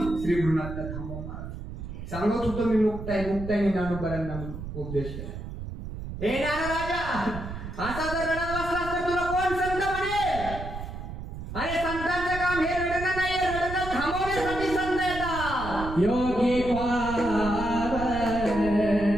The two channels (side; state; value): right; noise; rumble, 8 dB below the sound